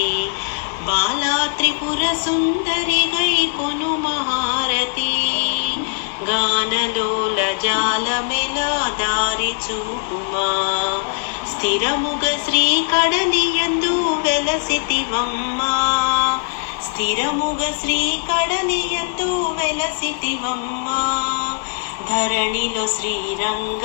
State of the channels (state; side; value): silent; right; digital silence